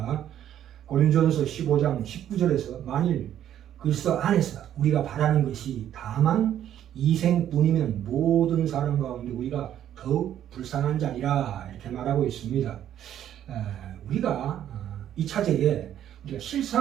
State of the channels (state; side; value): quieter; left; 10.8 dB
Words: 고린도전서 15장 19절에서 만일 그리스도 안에서 우리가 바라는 것이 다만 이생뿐이면 모든 사람 가운데 우리가 더욱 불쌍한 자리라 이렇게 말하고 있습니다. 우리가 이 차제에 우리가